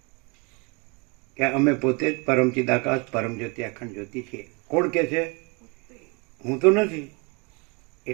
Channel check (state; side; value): quieter; left; 30.8 dB